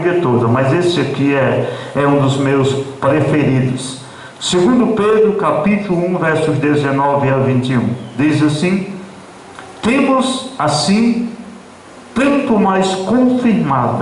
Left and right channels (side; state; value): both; identical; correlation 1.00